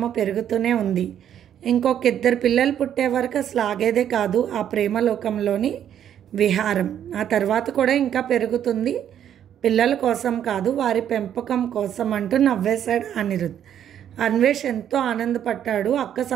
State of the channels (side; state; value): left; quieter; 9.9 dB